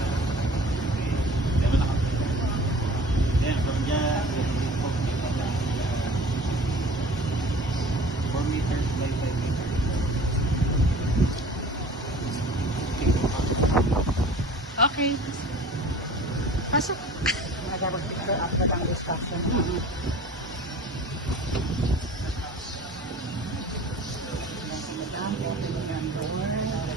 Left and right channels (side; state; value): both; normal; correlation 0.44